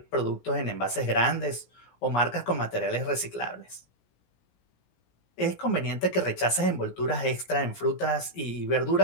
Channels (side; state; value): right; late; 17 ms